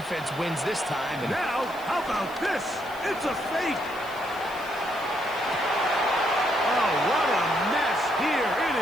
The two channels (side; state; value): left; noise; hiss, 21 dB below the sound